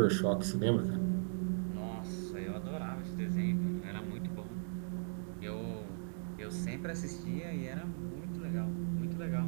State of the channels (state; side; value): silent; left; digital silence